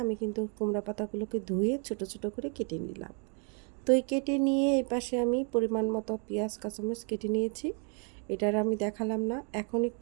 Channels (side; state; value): left; quieter; 39.6 dB